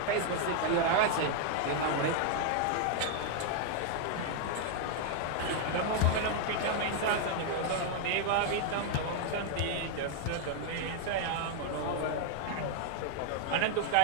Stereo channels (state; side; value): different; both; correlation 0.00